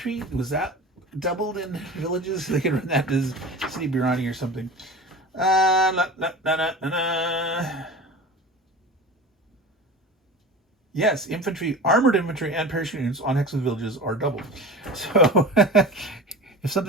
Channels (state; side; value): normal; both; correlation 0.33